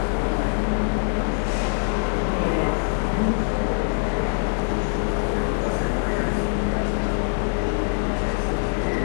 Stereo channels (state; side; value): silent; right; 63 dB below the other